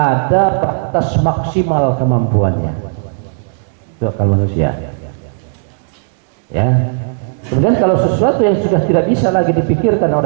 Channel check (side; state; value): left; silent; digital silence